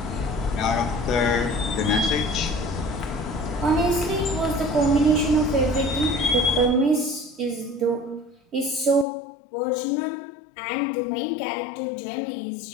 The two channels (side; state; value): right; drops out; at 9.1 s